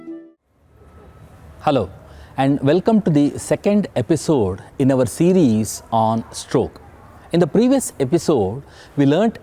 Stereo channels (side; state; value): both; identical; correlation 1.00